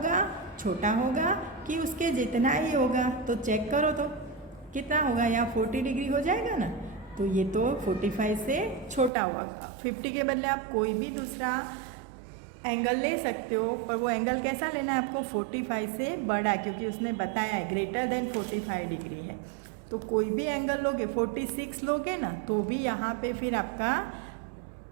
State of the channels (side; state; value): left; drops out; at 9.1 s